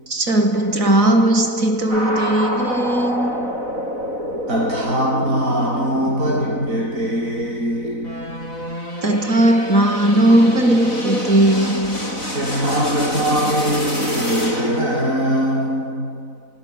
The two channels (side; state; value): left; late; 4.0 ms